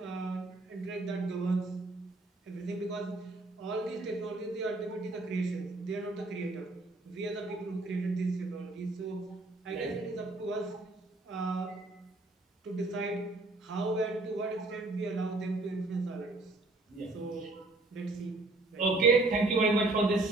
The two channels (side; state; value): left; quieter; 3.0 dB